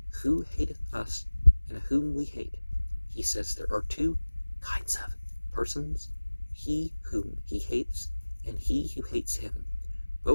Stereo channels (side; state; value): both; inverted; correlation -1.00